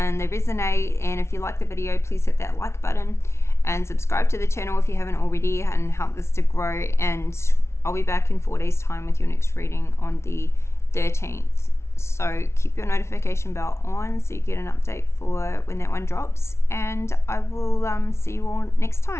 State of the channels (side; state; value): right; late; 0.13 ms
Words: they resonate. And if you like the video, please hit that like button and subscribe to the channel if you haven't already, and help this to grow. And I'll be back in 4 days time with your next reading on the 13th. So keep your notification bell on so you get an update for when that one drops, and I will see you all next